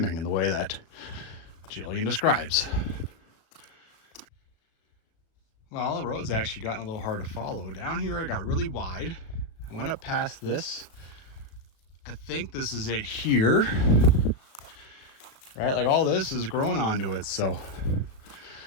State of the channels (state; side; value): late; right; 36 ms